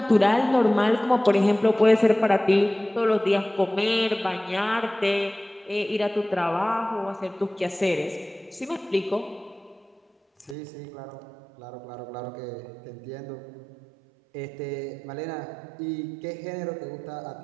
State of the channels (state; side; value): drops out; left; at 10.6 s